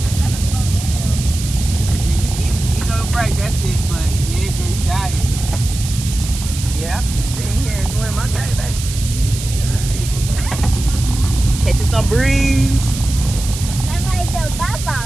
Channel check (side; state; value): right; noise; hiss, 9 dB below the sound